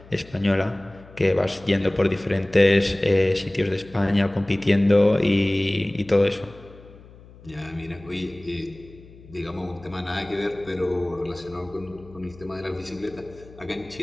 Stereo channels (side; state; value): left; noise; hum, 21 dB below the sound